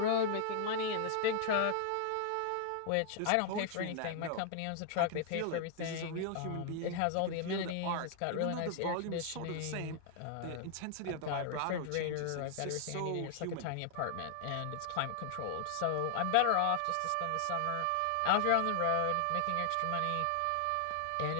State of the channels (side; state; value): both; different; correlation 0.00